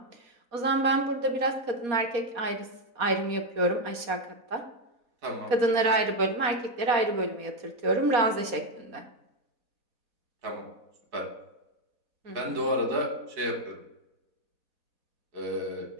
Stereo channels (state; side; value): late; left; 4.2 ms